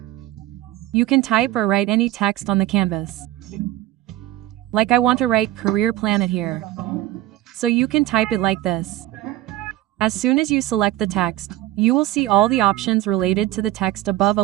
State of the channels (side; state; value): left; quieter; 15.4 dB